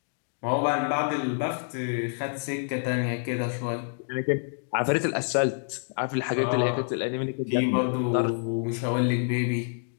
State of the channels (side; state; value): right; silent; digital silence